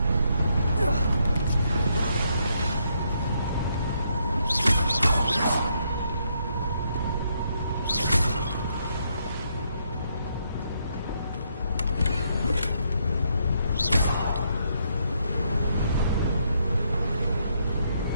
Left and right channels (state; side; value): inverted; both; correlation -0.75